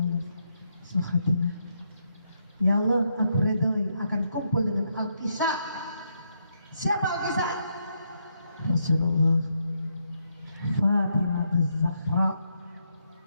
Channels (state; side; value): inverted; both; correlation -0.78